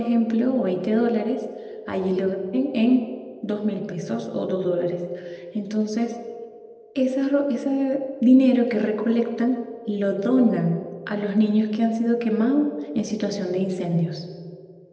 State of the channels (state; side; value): identical; both; correlation 1.00